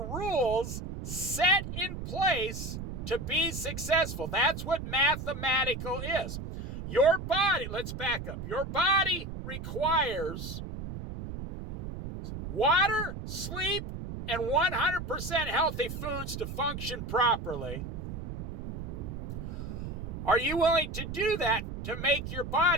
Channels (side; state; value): right; noise; rumble, 7 dB below the sound